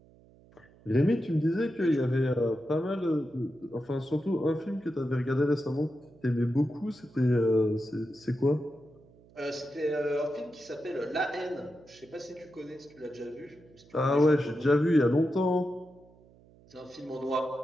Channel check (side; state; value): right; noise; hum, 26 dB below the sound